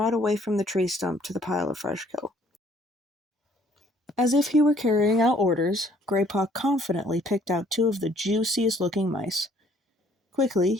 away from the tree stump to the pile of fresh kill. As if he were carrying out orders, Greypaw confidently picked out 2 of the juiciest-looking mice. Quickly,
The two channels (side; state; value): both; normal; correlation 0.61